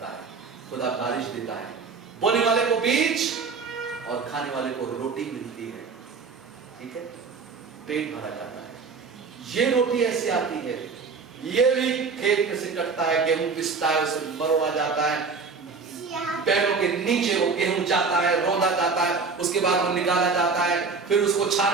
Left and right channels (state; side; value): quieter; left; 4.8 dB